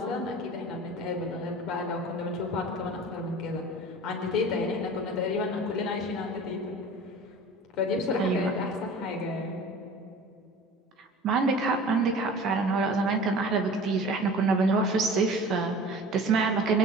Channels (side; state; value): both; normal; correlation 0.40